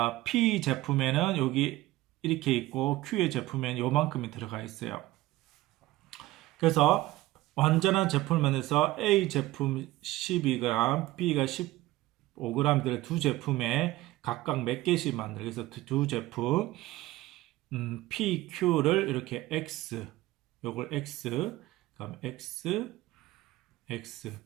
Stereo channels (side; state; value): left; quieter; 17.5 dB